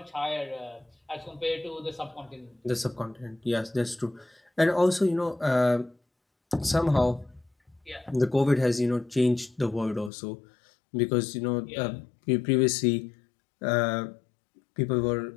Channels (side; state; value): right; drops out; at 10.1 s